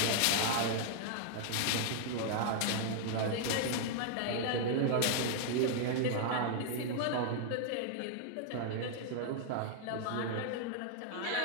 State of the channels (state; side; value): different; both; correlation -0.01